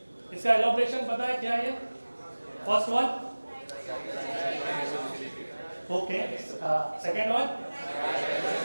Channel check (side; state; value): both; inverted; correlation -1.00